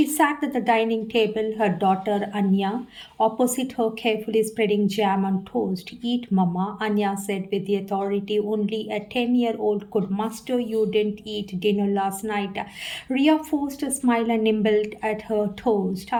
sat at the dining table, her daughter Anya opposite her, carefully spreading jam on toast. Eat, Mama, Anya said with the authority only a 10-year-old could muster. You didn't eat dinner last night. Ria forced a smile and nibbled at her toast.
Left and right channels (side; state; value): both; identical; correlation 1.00